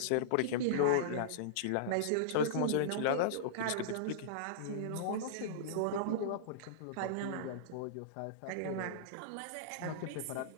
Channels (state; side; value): different; both; correlation -0.02